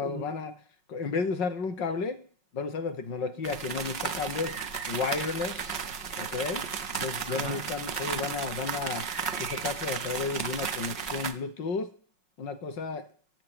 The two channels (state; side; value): late; right; 5.4 ms